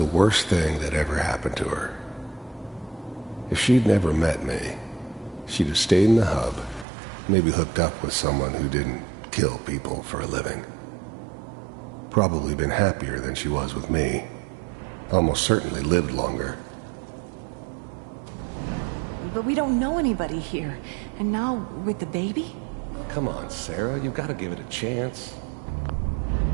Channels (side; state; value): left; drops out; at 6.9 s